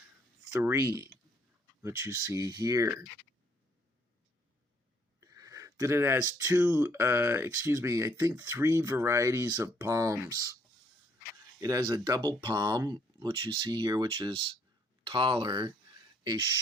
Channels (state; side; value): normal; both; correlation 0.66